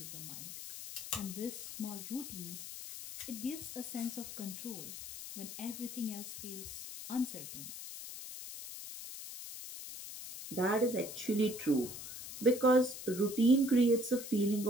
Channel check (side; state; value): left; noise; hiss, 10 dB below the sound